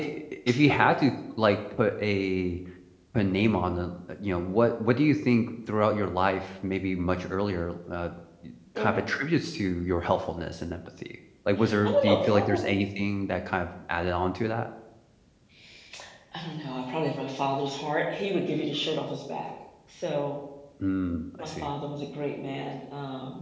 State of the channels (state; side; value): identical; both; correlation 1.00